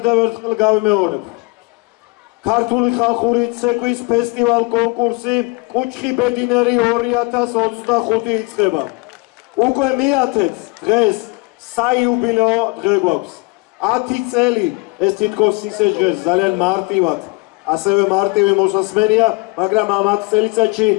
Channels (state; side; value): quieter; right; 26.9 dB